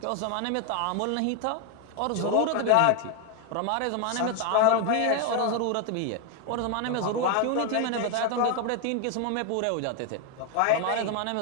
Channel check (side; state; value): both; different; correlation 0.01